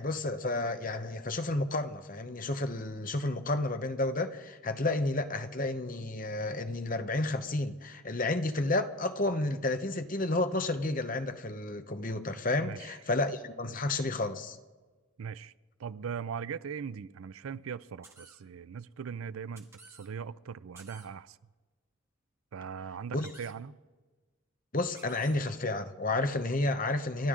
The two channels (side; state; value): both; normal; correlation 0.34